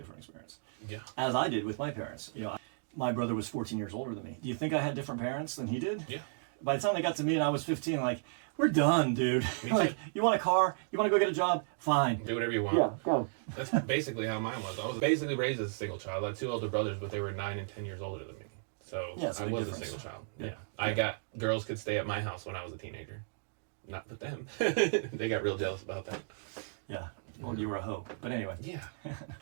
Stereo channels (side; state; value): left; silent; digital silence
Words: experience. Yeah. As I did with my parents. My brother was 14 years older than me. Do you think I had different parents than he did? Yeah. By the time they got to me and I was 15, like, we're done, dude. Like, you want a car? You want to go get a job? Fine. Do whatever you want. Yeah, go. That's basically how mine was. I was basically raised as a single child. I had two older brothers, but they were 9 and 10 years older than me. So Yeah, it's a I big was difference. a single child. Yeah. I got girls could stay at my house when I was a teenager. Not with them. They got real jealous about that. Yeah. Well, you were a hoe. But anyway. Yeah.